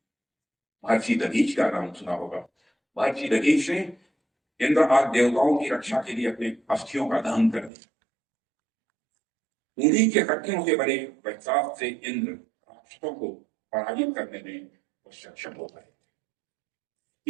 महर्षि दधीच का नाम सुना होगा। महर्षि दधीच ने इंद्र आदि देवताओं की रक्षा के लिए अपने अस्थियों का दान कर दिया। उन्हीं के हड्डियों से बने वैशाख से इंद्र राक्षसों को पराजित करने में वो सक्षम हो गए।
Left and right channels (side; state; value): left; drops out; at 7.7 s